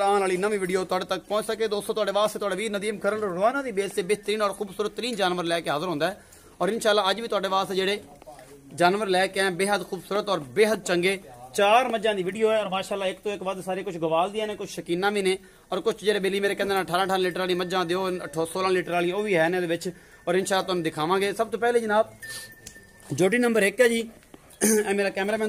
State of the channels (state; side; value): identical; both; correlation 1.00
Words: आने वाली नवी वीडियो तुहाडे तक पहुंच सके। दोस्तों तुहाडे वास्ते तुहाडा वीर नदीम खरल रोजाना दी बेस से बेहतरीन और खूबसूरत तरीन जानवर लैके हाजिर होंदा है और इंशाल्लाह अज भी तुहाडे वास्ते जेहड़े जानवर लैके आए बेहद खूबसूरत और बेहद चंगे चार मज्जां दी वीडियो है और माशाल्लाह एक तो एक वध सारे कुछ गवाल दियां ने कुछ शकीना भी ने और कुछ जेहड़े बेली मेरे कहंदे 18 लीटर वाली मज्जां दिओ 16 लीटर वाली वो भी है ने दे विच और इंशाल्लाह तुहानूं दिखावांगे। सब तो पहले जनाब जोटी नंबर 1 है जी, मेरा कैमरामैन